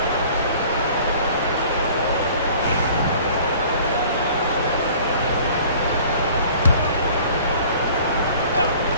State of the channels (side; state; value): both; inverted; correlation -0.49